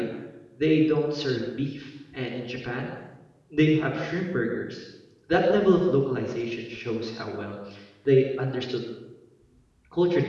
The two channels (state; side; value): identical; both; correlation 1.00